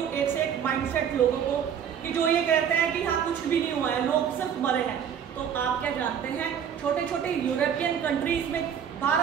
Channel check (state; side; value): quieter; left; 8.3 dB